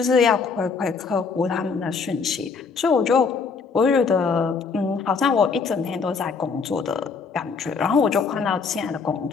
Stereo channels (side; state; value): right; quieter; 5.2 dB